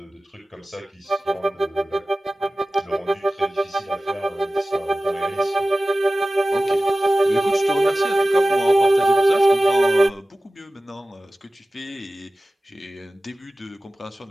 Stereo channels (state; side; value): normal; both; correlation 0.96